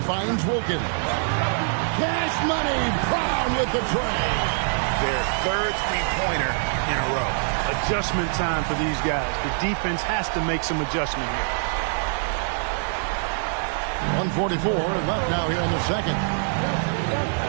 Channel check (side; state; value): left; silent; digital silence